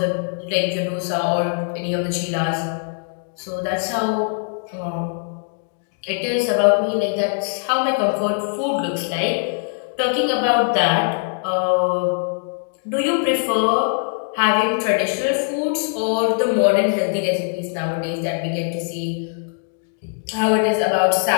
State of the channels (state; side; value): silent; right; 62 dB below the other